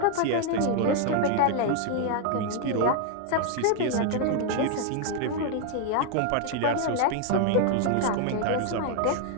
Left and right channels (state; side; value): different; both; correlation 0.00